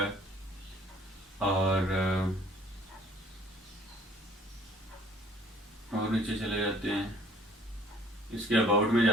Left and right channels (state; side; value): normal; both; correlation 0.55